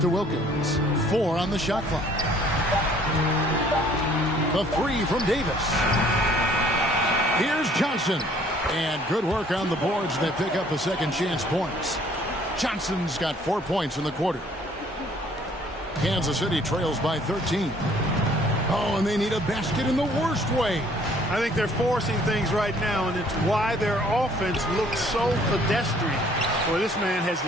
Wilkins. 4 on the shot clock. The 3 from Davis. Here's Johnson. And good work on the boards. They pick up the second chance points. Johnson's got 4 points in the quarter. Kansas City trails by 13. Oh, and they need a basket in the worst way. I think they're forcing things right now, and it's why their offense looks so pedestrian. Well, this man has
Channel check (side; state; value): both; normal; correlation 0.59